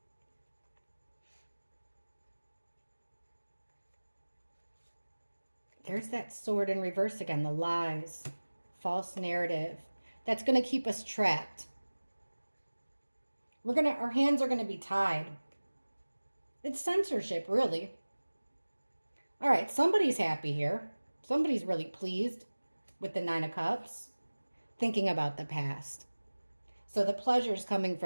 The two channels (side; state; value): both; inverted; correlation -1.00